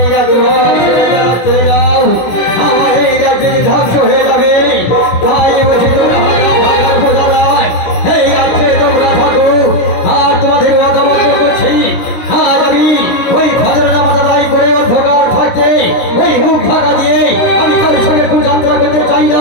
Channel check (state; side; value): late; right; 17 ms